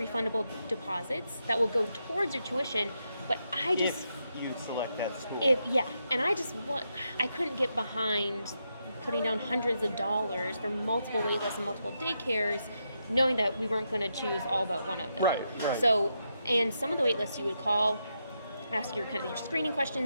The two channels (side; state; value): both; inverted; correlation -0.83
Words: deposits that will go towards your tuition. But I just... If you select that school. And I couldn't get behind putting down hundreds of dollars for multiple wait lists and multiple daycares, knowing that we weren't going to choose all but one of them. Right. So, and some of the wait lists you would call, ask your kind of your screening